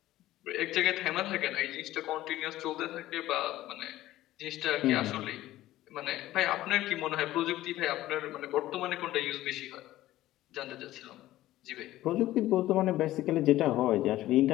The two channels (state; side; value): quieter; right; 15.2 dB